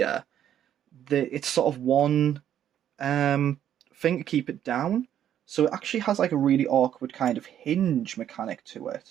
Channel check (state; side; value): quieter; left; 10.4 dB